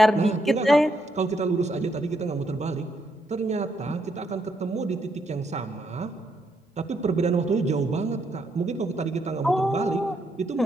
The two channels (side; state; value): both; normal; correlation 0.77